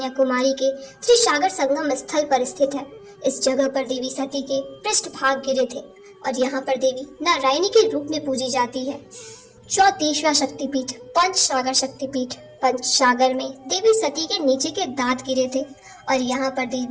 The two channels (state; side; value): identical; both; correlation 1.00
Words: के त्रिसागर संगम स्थल पर स्थित है। इस जगह पर देवी सती के पृष्ठभाग गिरे थे और यहाँ पर देवी नारायणी के रूप में पूजी जाती है। 34वां शक्तिपीठ पंचसागर शक्तिपीठ। पंचसागर में देवी सती के नीचे के दांत गिरे थे और यहाँ पर